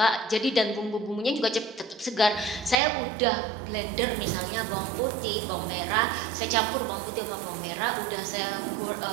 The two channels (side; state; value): left; drops out; at 2.8 s